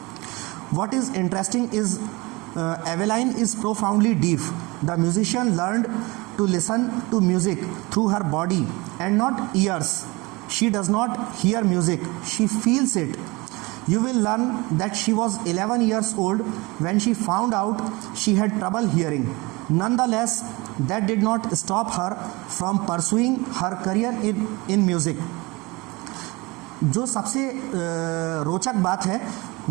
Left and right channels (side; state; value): left; quieter; 24.1 dB